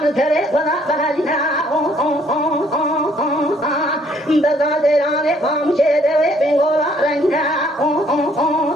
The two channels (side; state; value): both; normal; correlation 0.64